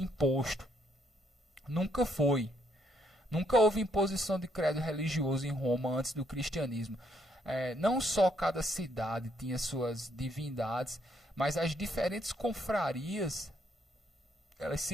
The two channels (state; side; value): normal; both; correlation 0.71